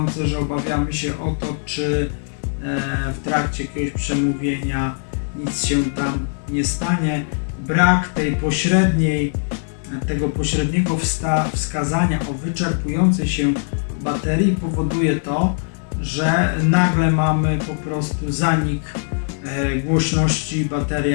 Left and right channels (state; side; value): silent; right; digital silence